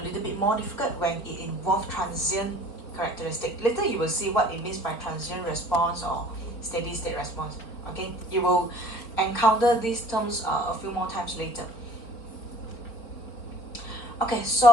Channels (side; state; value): right; late; 4.4 ms